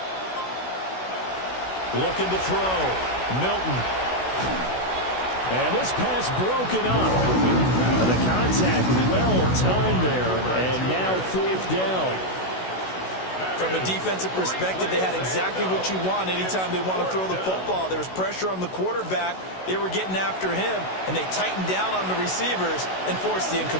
Looking to throw. Milton. And this pass broken up. The contact well timed there. And now fourth down. From a defensive perspective, they had exactly what you want anytime they want to throw the football. There was pressure on the quarterback. They were getting after him, and they tightened down on the receivers and forced the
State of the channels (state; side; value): late; right; 16 ms